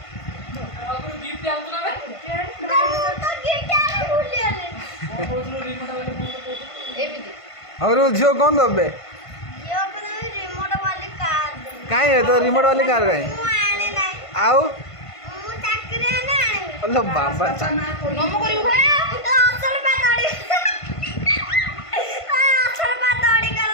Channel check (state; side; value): late; right; 1.5 ms